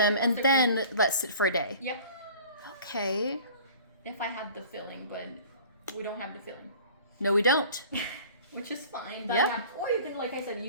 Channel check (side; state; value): both; inverted; correlation -0.45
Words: them and once they're then let sit for a day. Yep. Okay. If I had the filling, but we don't have the filling. No, we don't. Which is fine. Yeah. Or you can, like I said,